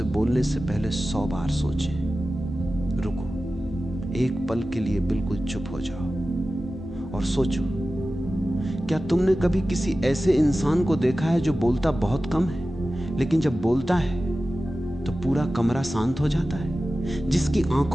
बोलने से पहले 100 बार सोचें। रुको, एक पल के लिए बिल्कुल चुप हो जाओ और सोचो, क्या तुमने कभी किसी ऐसे इंसान को देखा है जो बोलता बहुत कम है, लेकिन जब बोलता है तो पूरा कमरा शांत हो जाता है? जिसकी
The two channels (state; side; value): normal; both; correlation 0.95